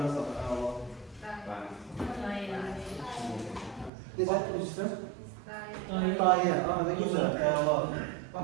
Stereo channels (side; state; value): left; drops out; at 3.9 s